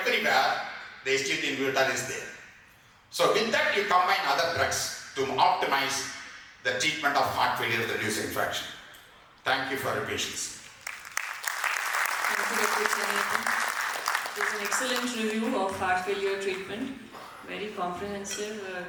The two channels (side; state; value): both; identical; correlation 1.00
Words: the SG2 inhibitor is there. So with that you combine other drugs to optimize the treatment of heart failure with reduced infection. Thank you for your patience. Thank you, Dr. Chenniappan. It was an excellent review of heart failure treatment. Very comprehensive,